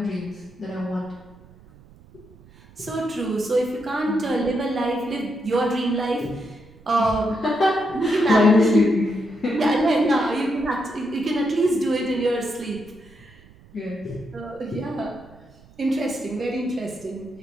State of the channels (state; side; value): noise; right; rumble, 25 dB below the sound